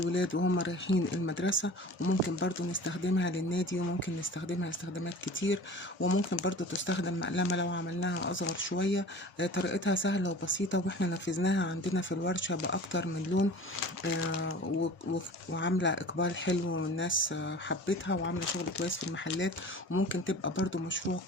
وهم رايحين المدرسة، وممكن برضو نستخدمها للنادي، وممكن نستخدمها استخدامات كتير، وممكن برضو تستخدم مقلمة لو عملناها أصغر شوية. طريقتها سهلة وبسيطة، واحنا نفذناها عندنا في الورشة بأكتر من لون. وعاملة إقبال حلو، والناس حبتها وعاملة شغل كويس في المحلات، وممكن تبقى برضو مشروع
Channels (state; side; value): normal; both; correlation 0.41